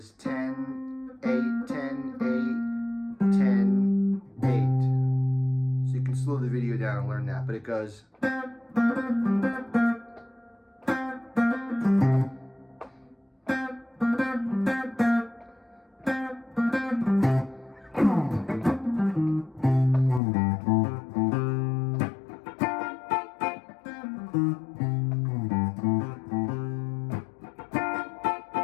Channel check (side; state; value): right; drops out; at 20.2 s